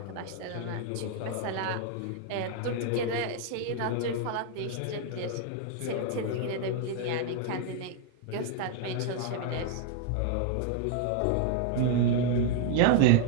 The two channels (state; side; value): different; both; correlation 0.00